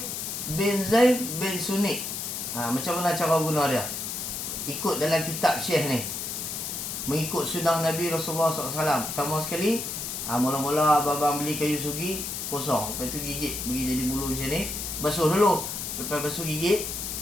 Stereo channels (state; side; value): noise; left; hiss, 5 dB below the sound